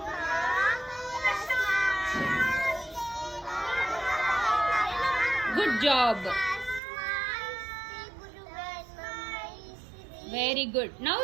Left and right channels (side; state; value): left; drops out; at 6.8 s